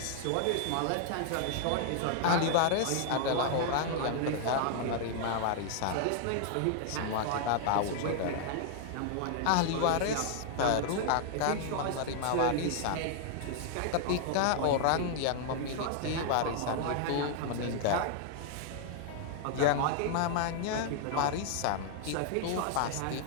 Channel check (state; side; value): different; both; correlation 0.00